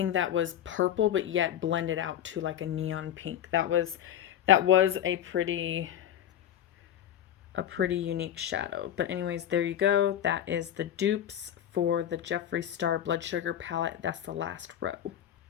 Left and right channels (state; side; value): quieter; right; 10.6 dB